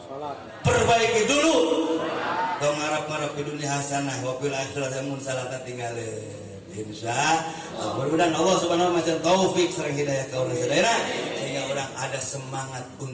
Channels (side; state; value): both; identical; correlation 1.00